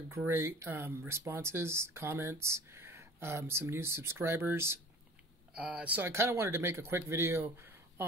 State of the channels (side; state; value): both; normal; correlation 0.43